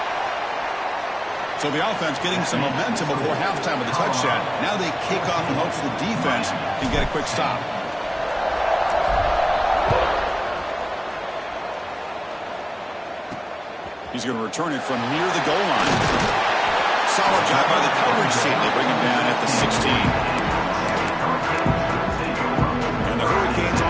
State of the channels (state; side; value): identical; both; correlation 1.00